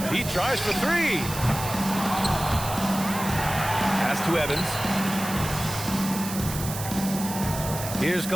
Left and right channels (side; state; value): right; noise; hiss, 8 dB below the sound